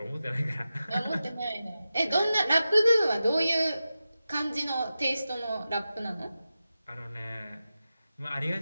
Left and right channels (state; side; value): inverted; both; correlation -0.92